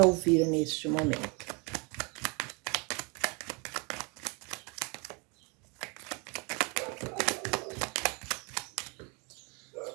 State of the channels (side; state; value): left; quieter; 31.5 dB